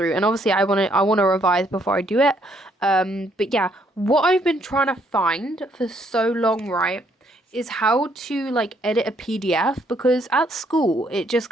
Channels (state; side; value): normal; both; correlation 0.69